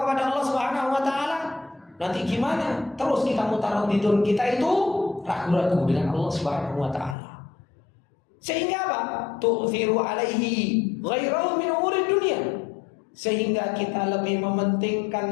kepada Allah Subhanahu wa taala, nanti gimana? Terus kita mutaraddidun, kita itu ragu-ragu dengan Allah Subhanahu wa taala. Sehingga apa? Tu'thiru alaihi ghairahu min umuri dunia. Sehingga kita lebih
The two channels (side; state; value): right; drops out; at 7.2 s